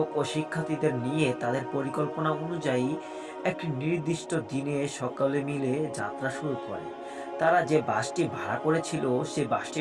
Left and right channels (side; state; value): both; identical; correlation 1.00